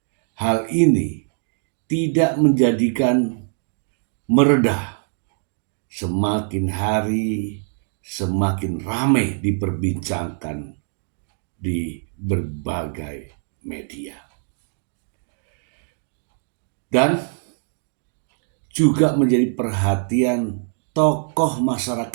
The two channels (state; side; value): silent; left; 59 dB below the other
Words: hal ini tidak menjadikan mereda. Semakin hari semakin ramai diperbincangkan di berbagai media. Dan juga menjadi perhatian tokoh